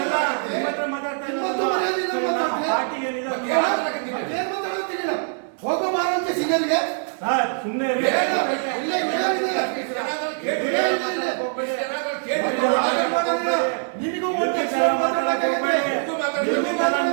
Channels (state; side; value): silent; left; 59 dB below the other